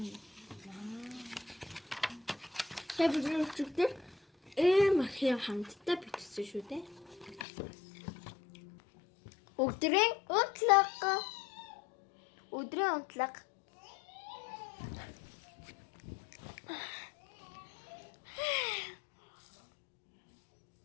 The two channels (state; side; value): drops out; right; at 7.4 s